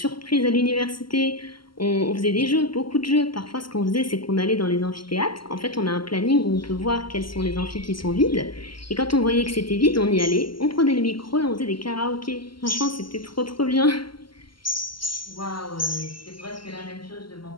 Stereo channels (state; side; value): late; right; 0.73 ms